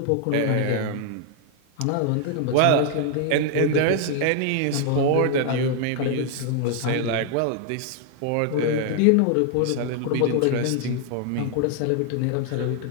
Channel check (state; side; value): different; both; correlation 0.00